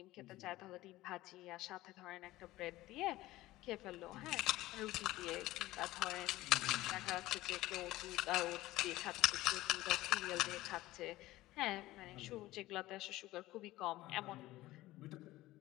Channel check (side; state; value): right; quieter; 17.3 dB